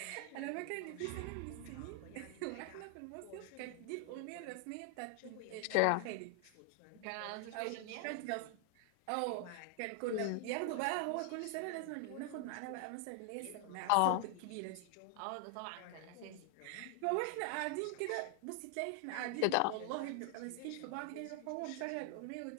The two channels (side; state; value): both; different; correlation 0.00